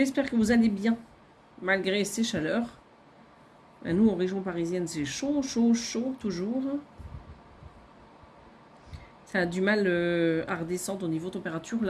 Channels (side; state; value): both; identical; correlation 1.00